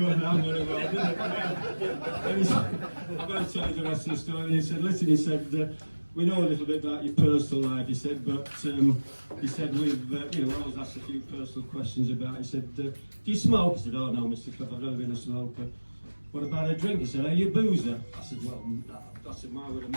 go down very well, did it? And he said, I'm going to tell you the rest of the story. And he said, listen, he said, we know a little bit about your personal life, he said, but he said, we've, you know, I was asked a few personal questions about it. He said, do you smoke? I said, oh no, Mr. Clough, I've never been a smoker. What about a drink? He said, are you a boozer? I said, well, that's a my word of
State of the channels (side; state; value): both; inverted; correlation -1.00